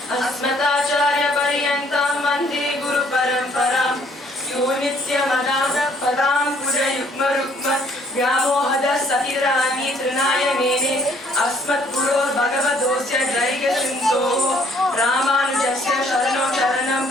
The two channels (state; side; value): normal; both; correlation 0.63